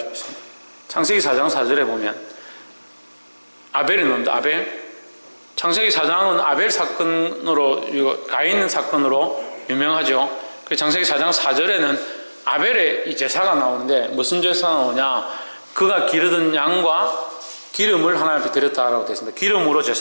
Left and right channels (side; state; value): both; inverted; correlation -1.00